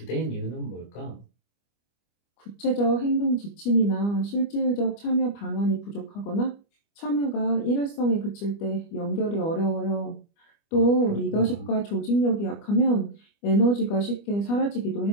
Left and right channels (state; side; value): late; right; 25 ms